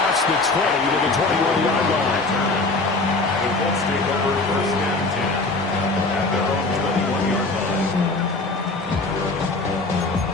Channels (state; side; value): quieter; right; 3.4 dB